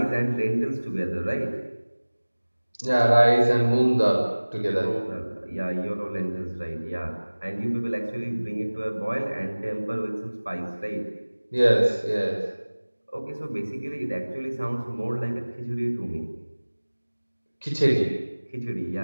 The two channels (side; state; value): both; inverted; correlation -1.00